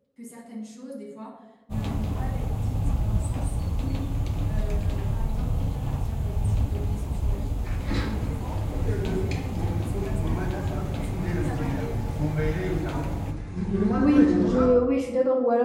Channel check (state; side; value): identical; both; correlation 1.00